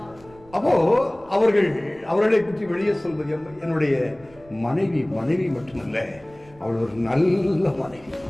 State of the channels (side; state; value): right; noise; rumble, 25 dB below the sound